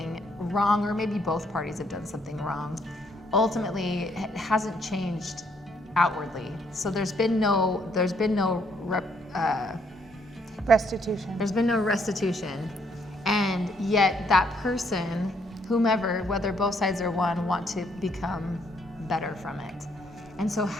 wrong, or maybe both parties have done something wrong, ultimately it hasn't changed outwardly. So there's been no restitution. There's been no restitution, and yet that person, whomever, whether both sides or one, want to become better from it. And so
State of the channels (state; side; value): normal; both; correlation 0.70